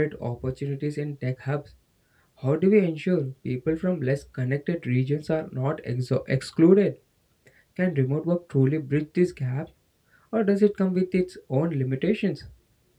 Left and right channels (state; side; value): identical; both; correlation 1.00